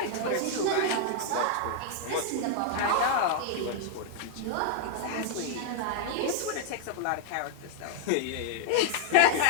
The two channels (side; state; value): both; different; correlation -0.01